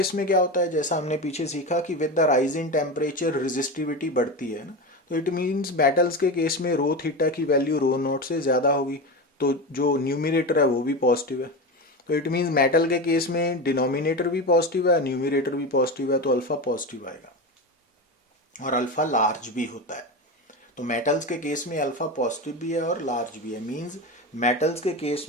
में क्या होता है, जैसा हमने पीछे सीखा कि with the rise in temperature resistivity बढ़ती है ना, तो इट मीन्स मेटल्स के केस में रो थीटा की वैल्यू रो नॉट से ज़्यादा होगी, तो जो न्यूमिनेटर है वो भी पॉजिटिव है। तो इट मीन्स मेटल के केस में डिनोमिनेटर भी पॉजिटिव है, न्यूमिनेटर भी पॉजिटिव है, तो अल्फा पॉजिटिव आएगा और अल्फा लार्ज भी होता है। तो मेटल्स के केस में अल्फा पॉजिटिव भी है और लार्ज भी है, मींस मेटल्स के केस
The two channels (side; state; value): both; normal; correlation 0.21